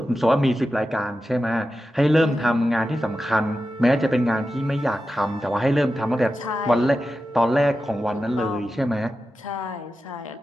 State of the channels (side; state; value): both; normal; correlation 0.91